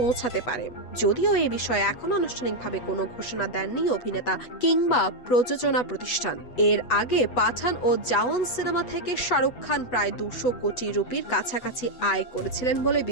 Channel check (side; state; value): right; late; 8.1 ms